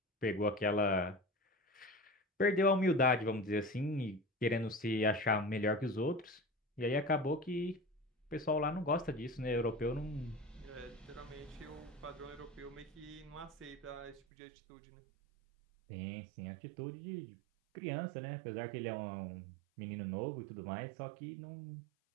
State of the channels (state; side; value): drops out; left; at 14.2 s